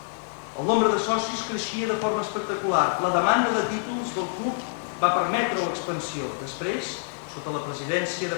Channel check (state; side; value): silent; right; digital silence